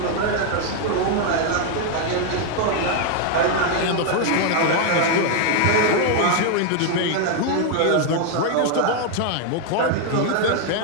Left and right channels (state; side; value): different; both; correlation 0.00